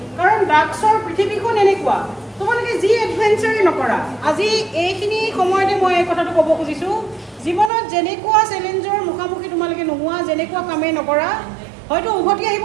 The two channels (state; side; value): drops out; left; at 7.7 s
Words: কাৰণ ড্ৰাগছৰ পৃথিৱীখন এনেকুৱা তোমালোকে যি এডভেঞ্চাৰেই নকৰা আজি এইখিনি সময়তে মই এই কথাটো ক'ব খুজিছোঁ জীৱনত যেনেকুৱা চেলেঞ্জৰ মুখামুখি তোমালোকে নোহোৱা যেনেকুৱা কামেই নকৰা হয়তো উভতি আহিব